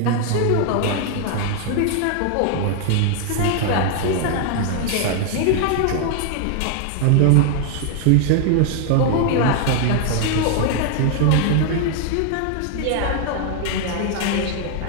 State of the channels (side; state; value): both; different; correlation 0.00